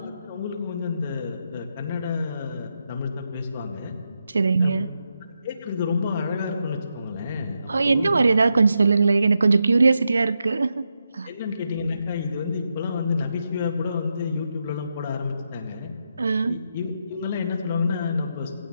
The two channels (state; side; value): inverted; both; correlation -0.85